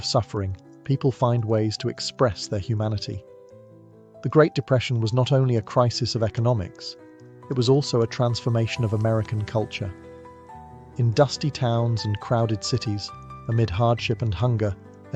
suffering, people find ways to express their humanity. The Great Depression was not only a crisis of economics, it was also a transformation of American culture. In dusty towns and crowded cities, amid hardship and hunger,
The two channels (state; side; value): identical; both; correlation 1.00